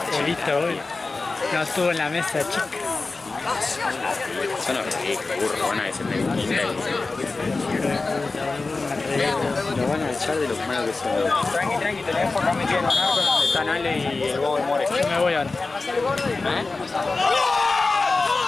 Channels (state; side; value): quieter; right; 3.7 dB